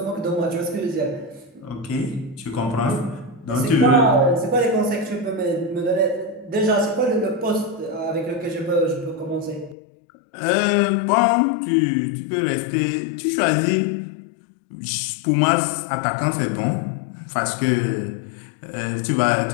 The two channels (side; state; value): right; drops out; at 9.8 s